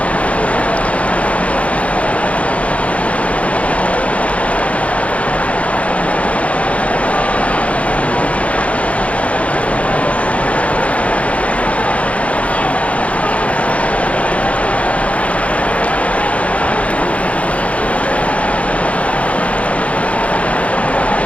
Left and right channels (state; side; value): late; right; 0.064 ms